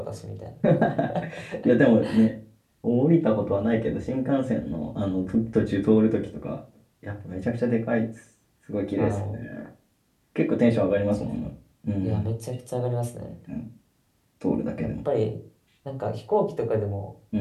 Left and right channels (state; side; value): identical; both; correlation 1.00